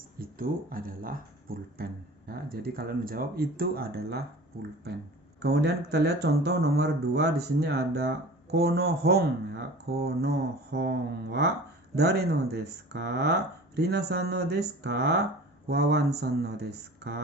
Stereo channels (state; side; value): normal; both; correlation 0.40